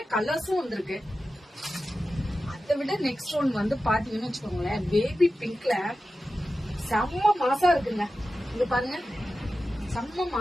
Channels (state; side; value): normal; both; correlation 0.93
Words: கலர்ஸும் வந்திருக்கு. அதை விட நெக்ஸ்ட் ஒன் வந்து பாத்தீங்கன்னு வச்சுக்கோங்களேன், பேபி பிங்க்ல செம்ம மாசா இருக்குங்க. இங்க பாருங்க, செம்ம